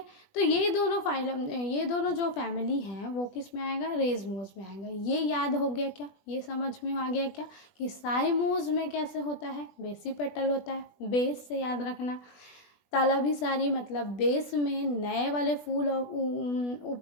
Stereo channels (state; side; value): late; right; 20 ms